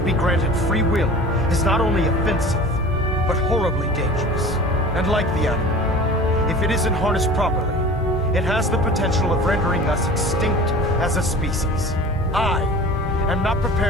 be granted free will is not only offensive, but horribly dangerous. And like the atom, if it isn't harnessed properly, it has the potential of rendering us extinct as a species. I am not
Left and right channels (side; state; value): both; normal; correlation 0.40